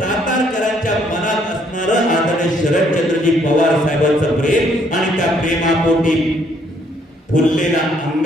मनात असणारं आदरणीय शरदचंद्रजी पवार साहेबांचं प्रेम आणि त्या प्रेमापोटी फुललेला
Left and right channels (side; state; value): both; normal; correlation 0.67